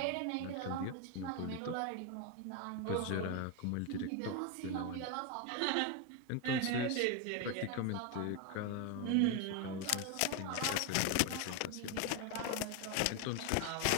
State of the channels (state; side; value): different; both; correlation 0.01